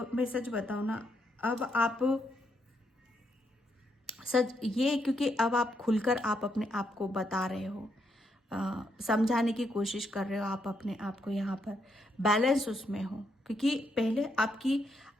मैं सच बताऊँ ना, अब आप क्योंकि अब आप खुलकर आप अपने आप को बता रहे हो, समझाने की कोशिश कर रहे हो आप अपने आप को, यहाँ पर बैलेंस उसमें हो। क्योंकि पहले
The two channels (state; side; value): normal; both; correlation 0.78